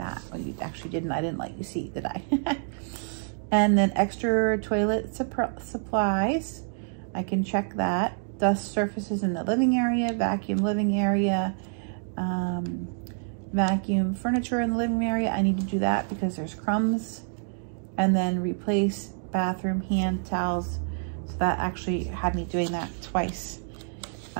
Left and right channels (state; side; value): silent; left; digital silence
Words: Well, you actually didn't. I didn't let you see, did I? And then extra toilet supplies. I can check that. Dust surfaces in the living area, vacuum living area, vacuum furniture in the living area. I need to do that because there's crumbs. And then replace bathroom hand towels. So that actually had me doing that twice.